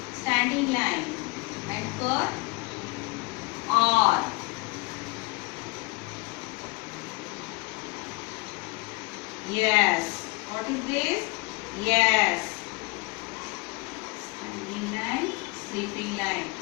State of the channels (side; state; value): right; quieter; 25.8 dB